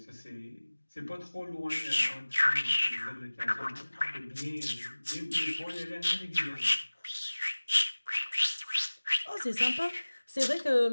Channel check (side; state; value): both; inverted; correlation -1.00